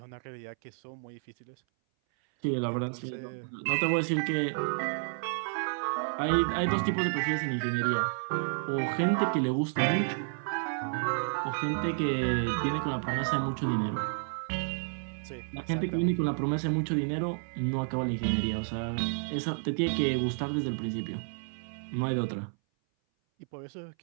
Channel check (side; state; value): left; silent; 57 dB below the other